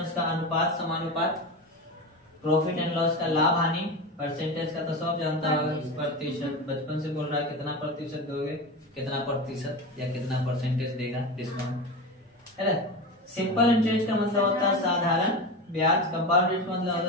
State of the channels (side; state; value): both; normal; correlation 0.23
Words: का अनुपात समानुपात, प्रॉफिट एंड लॉस का लाभ हानि, परसेंटेज का तो सब जानता होगा, प्रतिशत, बचपन से बोल रहा है कितना प्रतिशत दोगे, कितना प्रतिशत या कितना परसेंटेज देगा डिस्काउंट, है ना। सिंपल इंटरेस्ट का मतलब होता है साधारण ब्याज, कंपाउंड इंटरेस्ट मतलब होता